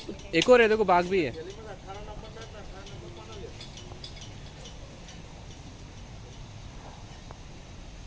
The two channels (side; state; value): both; identical; correlation 1.00